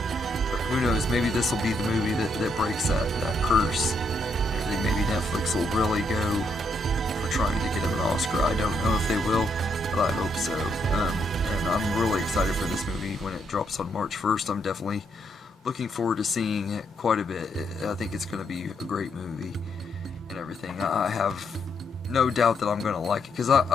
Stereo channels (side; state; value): both; normal; correlation 0.76